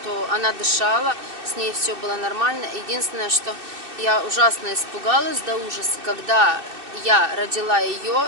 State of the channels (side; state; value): left; late; 2.6 ms